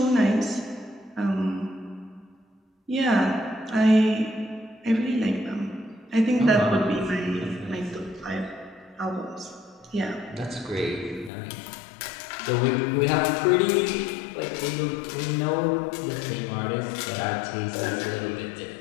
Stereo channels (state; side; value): drops out; right; at 11.3 s